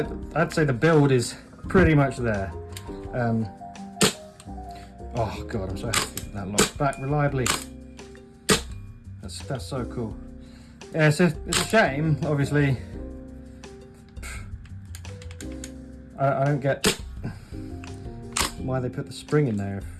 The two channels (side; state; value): both; identical; correlation 1.00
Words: I'd say the build is pretty much there. Oh god, I'm so happy that locks back reliably. That's so cool. Yeah, so it's a shame, obviously. I don't get why they put the spring in there